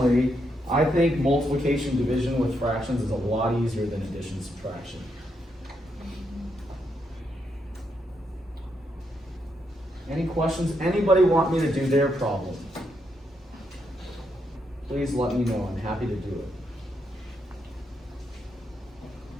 I think multiplication division with fractions is a lot easier than addition subtraction. Any questions? Anybody want me to do their problem? Please let me know. I'm happy to do it.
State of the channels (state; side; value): normal; both; correlation 0.79